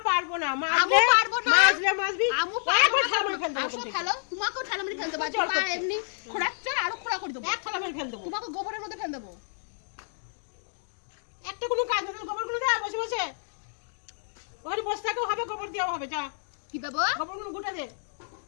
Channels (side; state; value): right; silent; digital silence